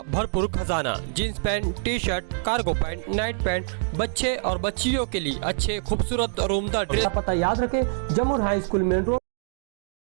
भरपूर खजाना। Jeans pant, T shirt, cargo pant, night pant, बच्चे और बच्चियों के लिए अच्छे खूबसूरत और उम्दा ड्रेस। पता याद रखें, जमुर हाई स्कूल मेन रोड।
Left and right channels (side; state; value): left; silent; digital silence